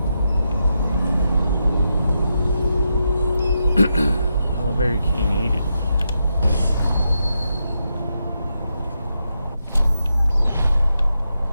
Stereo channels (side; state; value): both; inverted; correlation -0.85